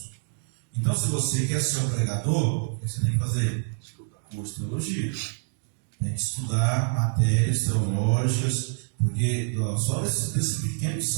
Então, se você quer ser um pregador, o que você tem que fazer? Curso de teologia. Tem que estudar matérias teológicas, porque só desse pequeno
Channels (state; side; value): silent; left; digital silence